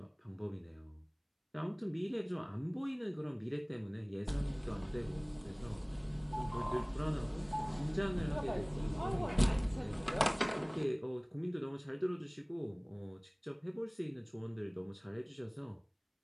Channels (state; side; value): identical; both; correlation 1.00